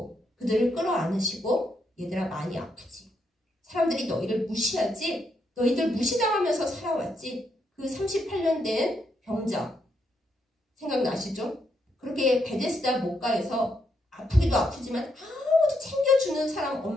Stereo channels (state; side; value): normal; both; correlation 0.78